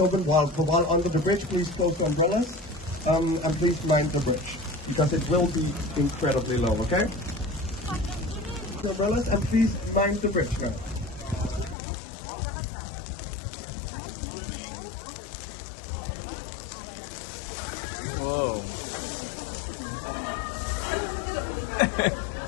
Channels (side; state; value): right; drops out; at 11.8 s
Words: while under the bridge. Please close the umbrellas and please mind the bridge because it will be incredibly low, okay? The umbrellas and please mind the bridge now. Whoa.